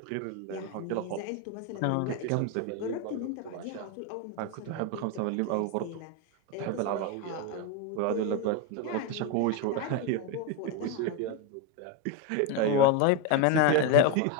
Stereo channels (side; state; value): both; different; correlation 0.02